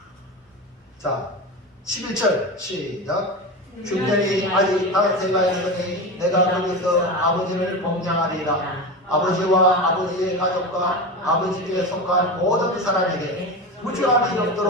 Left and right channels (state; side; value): normal; both; correlation 0.23